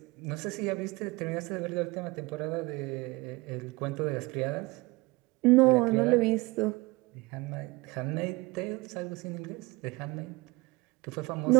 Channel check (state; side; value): quieter; left; 23.4 dB